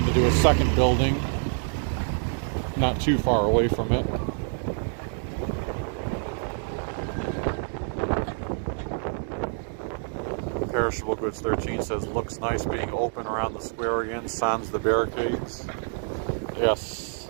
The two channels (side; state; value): left; silent; 56 dB below the other